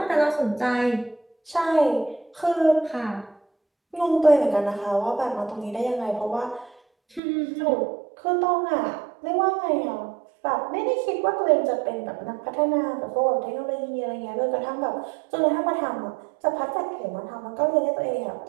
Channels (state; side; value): drops out; left; at 7.2 s